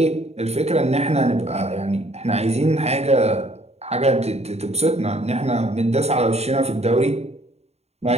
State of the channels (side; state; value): left; late; 0.31 ms